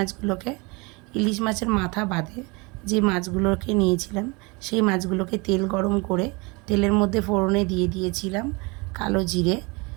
ইলিশ মাছের মাথা বাদে যে মাছগুলোকে নিয়েছিলাম, সেই মাছগুলোকে তেল গরম করে তেলের মধ্যে ফোড়নে দিয়ে দিয়েছিলাম কালো জিরে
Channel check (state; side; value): quieter; left; 27.7 dB